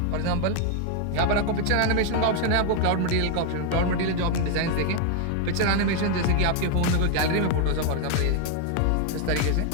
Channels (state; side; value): different; both; correlation 0.00